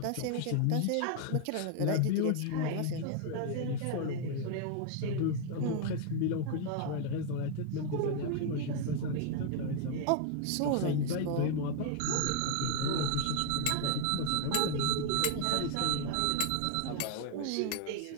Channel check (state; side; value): different; both; correlation 0.00